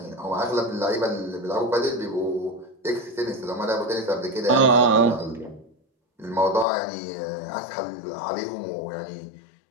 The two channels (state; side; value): drops out; right; at 6.7 s